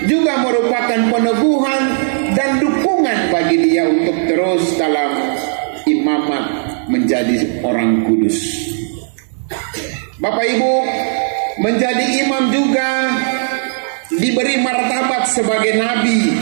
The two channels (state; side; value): silent; left; 69 dB below the other